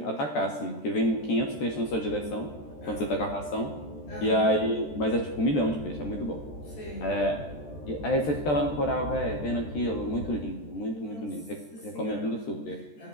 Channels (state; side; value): late; right; 14 ms